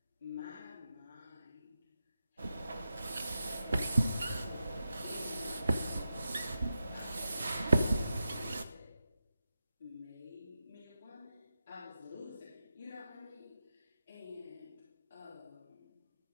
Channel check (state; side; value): inverted; both; correlation -0.90